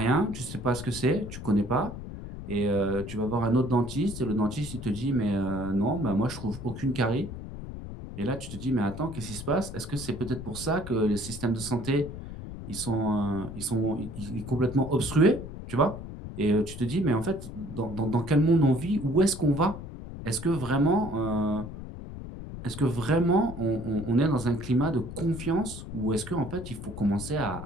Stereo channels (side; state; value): left; noise; rumble, 10 dB below the sound